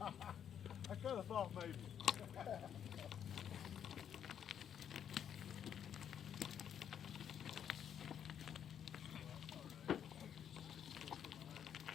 kind of thought maybe.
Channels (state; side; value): quieter; right; 8.9 dB